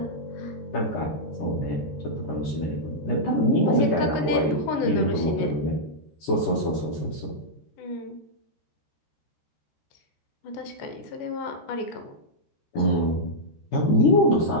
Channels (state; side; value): late; right; 14 ms